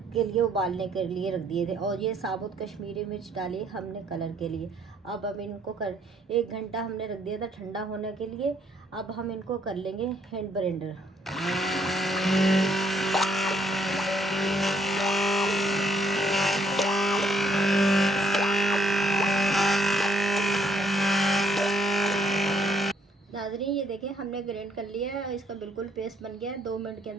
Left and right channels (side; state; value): both; normal; correlation 0.68